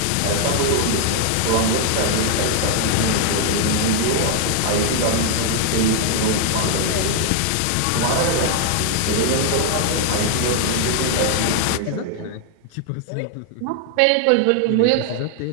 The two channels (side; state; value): both; different; correlation 0.00